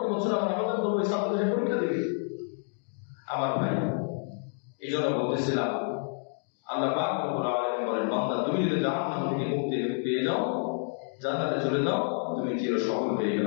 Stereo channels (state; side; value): silent; right; 59 dB below the other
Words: বছর আমরা আবেদন করবো ছাত্র সে পরীক্ষা দেবে। আমার ভাই, এই জন্য বলতেছিলাম আল্লাহ পাক রব্বুল আলামিন বলেন, বান্দা তুমি যদি জাহান্নাম থেকে মুক্তি পেয়ে যাও, জান্নাতে চলে যাও, তুমি চির সফল হয়ে